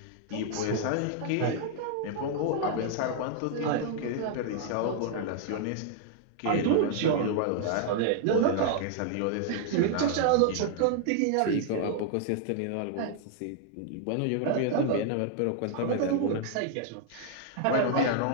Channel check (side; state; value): both; different; correlation -0.01